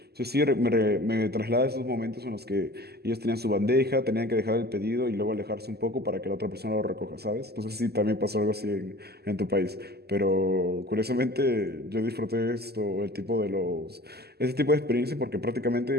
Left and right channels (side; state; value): left; late; 0.46 ms